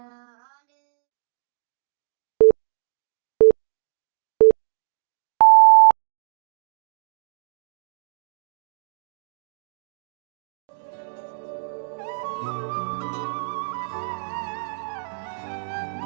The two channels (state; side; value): silent; left; digital silence